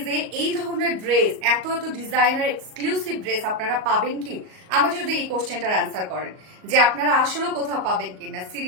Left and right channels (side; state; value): left; late; 38 ms